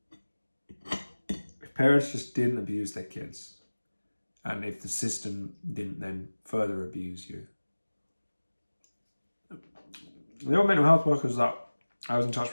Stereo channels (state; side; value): inverted; both; correlation -1.00